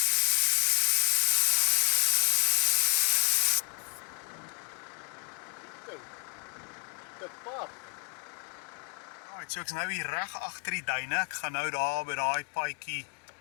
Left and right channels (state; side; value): quieter; right; 37.2 dB